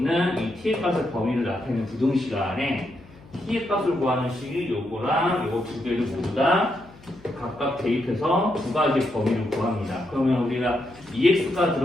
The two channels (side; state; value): left; noise; hum, 24 dB below the sound